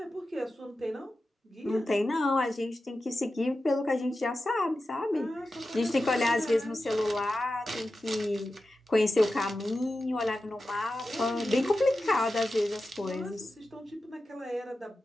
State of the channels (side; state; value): both; normal; correlation 0.92